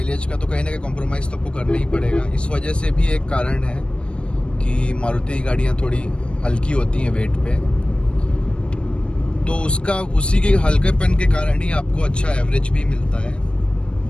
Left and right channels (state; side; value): late; right; 0.057 ms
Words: का, तो कहीं ना कहीं कॉम्प्रोमाइज़ तो आपको करना ही पड़ेगा। इस वजह से भी एक कारण है कि मारुति की गाड़ियाँ थोड़ी हल्की होती हैं वेट पे। तो उसी के हल्केपन के कारण ही आपको अच्छा एवरेज भी मिलता है।